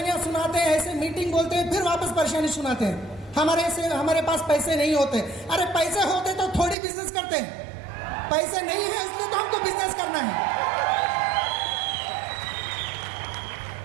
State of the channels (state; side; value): drops out; left; at 6.8 s